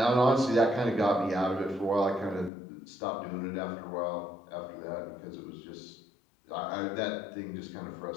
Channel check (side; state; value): right; drops out; at 2.5 s